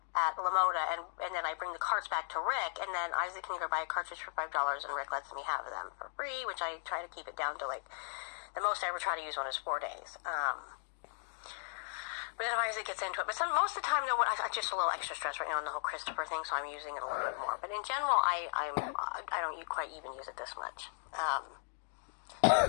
at Lamoda, and then I bring the carts back to Rick, and then Isaac can go buy a cartridge for $5, and Rick lets me have them for free, which I try to keep it down to, like, the most I ever try to use one is 4 days. But then Isaac gets into it. But most of the time, I'm just a little extra stressed right now on the whole Christopher thing, so I'm using it a little bit more. But in general, I don't quite even use it this much.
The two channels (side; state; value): right; silent; digital silence